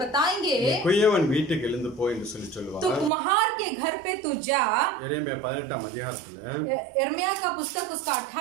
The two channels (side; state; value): left; drops out; at 3.1 s